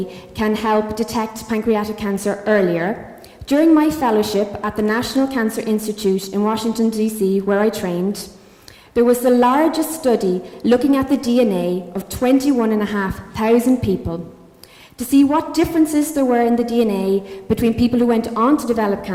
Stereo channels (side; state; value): both; identical; correlation 1.00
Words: can help detect pancreatic cancer earlier, during my fellowship at the National Cancer Institute in Washington, D.C., where I trained, there was the largest study looking at the DNA of 21,500 people to see what differences there were in the DNA between people who went on to develop